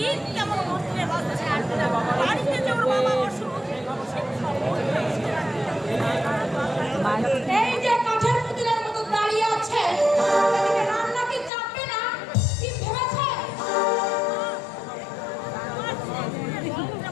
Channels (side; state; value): right; drops out; at 11.5 s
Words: কেমন মরতে হচ্ছে। বাড়িতে যে ওর বাবা অসুখ, এই যে কাঠের পুতুলের মতো দাঁড়িয়ে আছে, এদিকে রান্না কি চাপবে না? কি ভেবেছে?